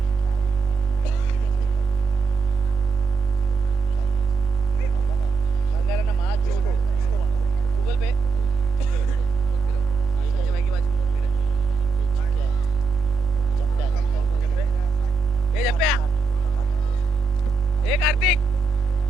अंगारा माँ छोड़. गूगल पे. ए जप्प्या. ए कार्तिक.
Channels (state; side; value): quieter; left; 4.6 dB